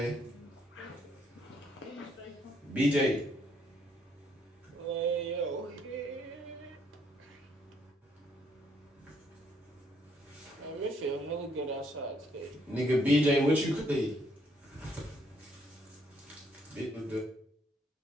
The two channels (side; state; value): both; normal; correlation 0.69